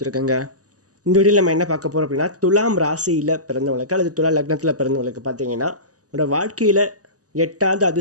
இந்த வீடியோவில் நம்ம என்ன பார்க்க போகிறோம் அப்படின்னா, துலாம் ராசியில் பிறந்தவங்களுக்கு அல்லது துலா லக்னத்தில் பிறந்தவங்களுக்கு பார்த்தீங்கன்னா உங்களோட வாழ்க்கையில் எட்டாவது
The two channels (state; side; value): late; left; 0.67 ms